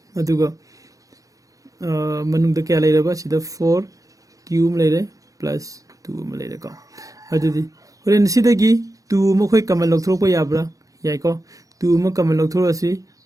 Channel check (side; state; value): left; late; 0.17 ms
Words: अदुग मनुंग द क्या लेरबा सिदा 4q में लेरे plus 2 में लेरे को अदुदी होरेन सिदगी 2 म खोय कमल लौथरोपा याब्रा याइको 2 म कमल लौथरोसी